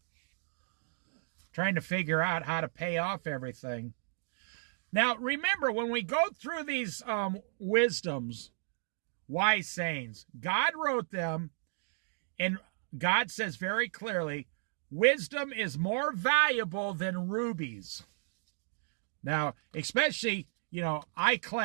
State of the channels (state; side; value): silent; left; digital silence